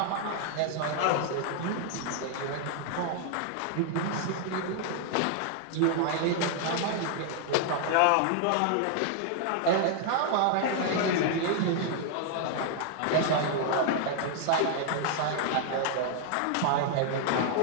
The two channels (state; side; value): different; both; correlation 0.00